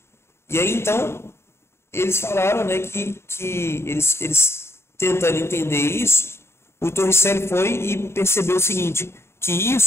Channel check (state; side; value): late; right; 0.12 ms